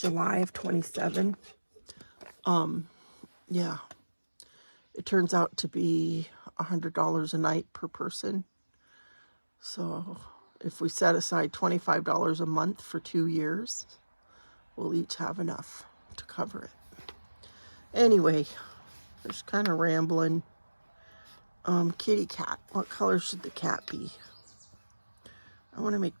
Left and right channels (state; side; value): inverted; both; correlation -1.00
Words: of 27. Yeah, it turns out to be $100 a night per person. So if we set aside $25 a month for 2 years, we'll each have enough to cover it. Anyway, just kind of rambling. Kitty cat. What color should the cat be? I want to make